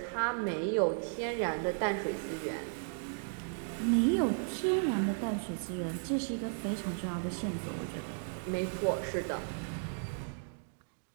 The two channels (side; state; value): left; silent; digital silence